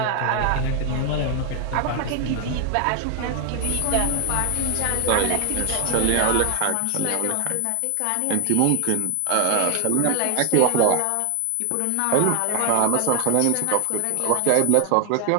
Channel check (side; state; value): both; different; correlation 0.00